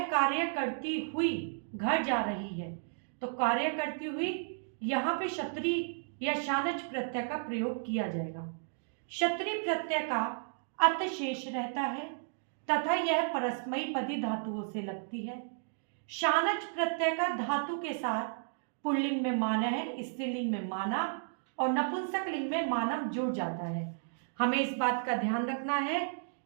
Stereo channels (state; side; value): silent; left; digital silence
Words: कार्य करती हुई घर जा रही है, तो कार्य करती हुई यहाँ पे क्षत्रिय या शानच प्रत्यय का प्रयोग किया जाएगा। क्षत्रिय प्रत्यय का अत शेष रहता है तथा यह परस्मयी पदी धातुओं से लगती है। शानच प्रत्यय का धातु के साथ पुल्लिंग में माना है, स्त्रीलिंग में माना और नपुंसक लिंग में मानव जुड़ जाता है। हमें इस बात का ध्यान रखना है